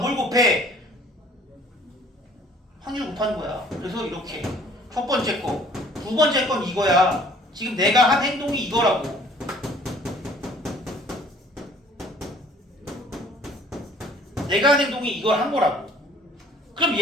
곱해? 확률 곱하는 거야. 그래서 이렇게 첫 번째 거, 두 번째 건 이거야. 지금 내가 한 행동이 이거라고. 내가 한 행동이 이걸 한 거라고. 그럼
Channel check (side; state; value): both; normal; correlation 0.55